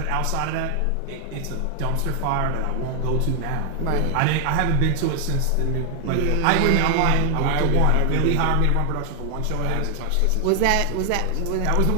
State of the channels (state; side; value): different; both; correlation 0.00